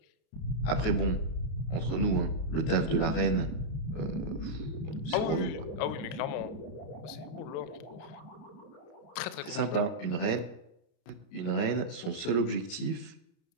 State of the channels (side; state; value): right; late; 33 ms